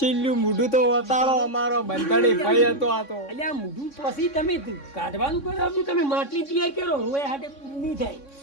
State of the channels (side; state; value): right; late; 3.6 ms